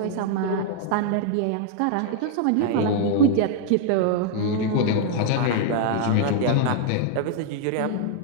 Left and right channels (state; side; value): different; both; correlation -0.01